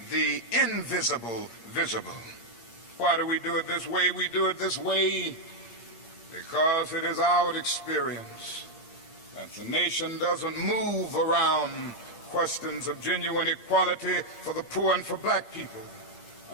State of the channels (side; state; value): right; late; 8.6 ms